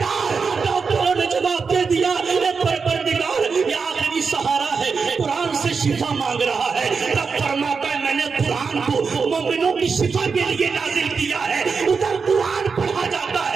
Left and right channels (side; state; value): left; quieter; 5.2 dB